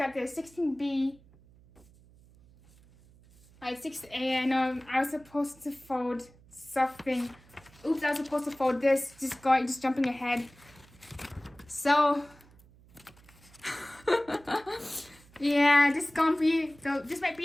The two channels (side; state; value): right; noise; hum, 26 dB below the sound